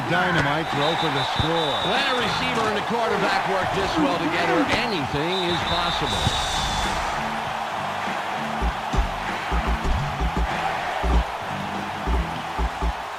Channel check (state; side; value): identical; both; correlation 1.00